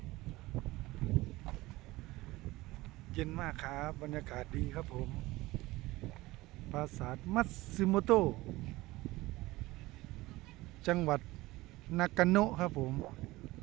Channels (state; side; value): quieter; left; 19.4 dB